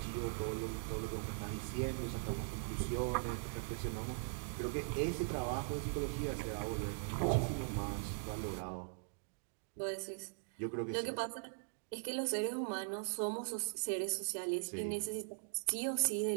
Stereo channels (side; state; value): left; silent; digital silence